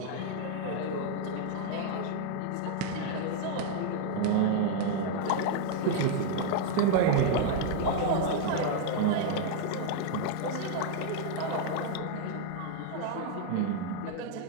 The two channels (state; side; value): different; both; correlation 0.00